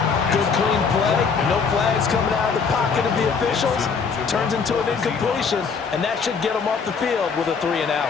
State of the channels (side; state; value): right; quieter; 5.6 dB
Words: Good clean play. No flags coming out of the pocket of the officials. Turns into an incompletion, and that should get him off the field with a 3 and